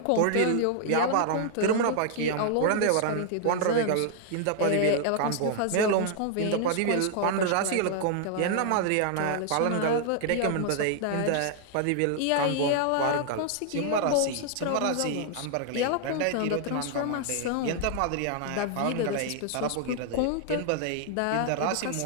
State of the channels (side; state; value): both; different; correlation 0.00